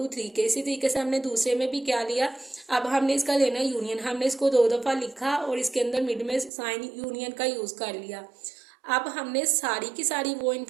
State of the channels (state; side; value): drops out; left; at 6.5 s